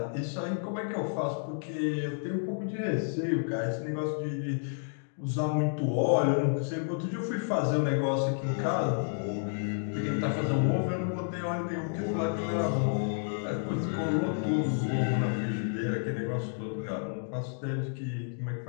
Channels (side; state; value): right; silent; digital silence